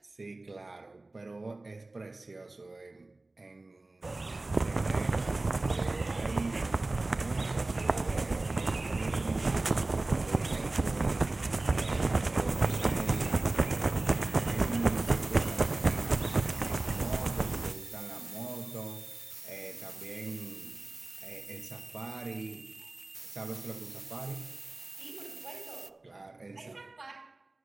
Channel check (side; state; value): left; quieter; 3.0 dB